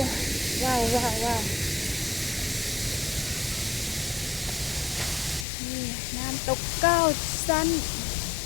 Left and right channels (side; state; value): right; drops out; at 5.5 s